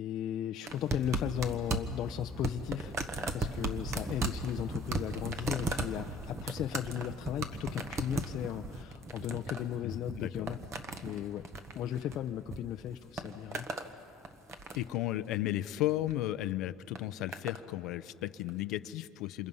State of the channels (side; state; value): right; quieter; 4.9 dB